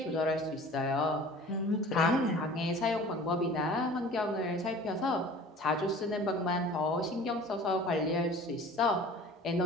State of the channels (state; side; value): normal; both; correlation 0.44